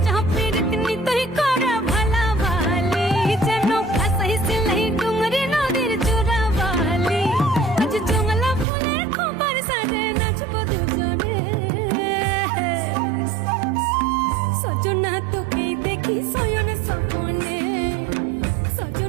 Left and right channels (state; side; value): drops out; left; at 8.7 s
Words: হাফের দিন তুই করে ভালাবালি যেন ভাসাই সিলাই ডুঙরি নদীর চোরাবালি আজ জঙ্গলা ফুলের খোপার সাজে নাচবো দুজনে সজনা তোকে দেখি শয়ন স্বপনে